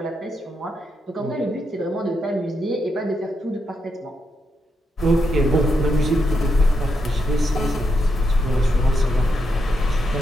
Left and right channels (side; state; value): both; normal; correlation 0.82